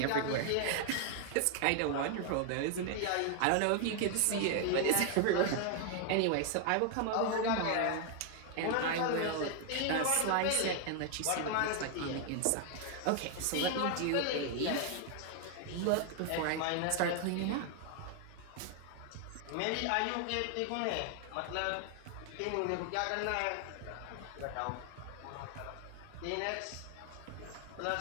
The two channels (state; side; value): different; both; correlation 0.00